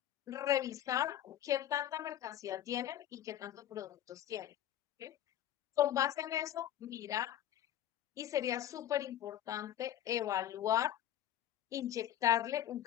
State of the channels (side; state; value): right; quieter; 11.6 dB